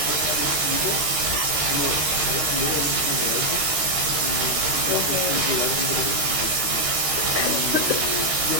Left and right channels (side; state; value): left; late; 13 ms